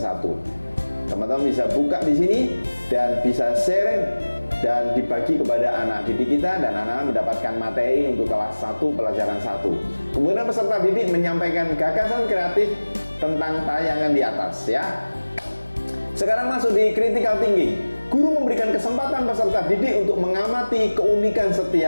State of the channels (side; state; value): both; inverted; correlation -1.00